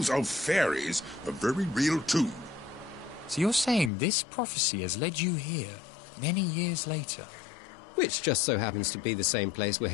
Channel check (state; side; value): drops out; right; at 3.9 s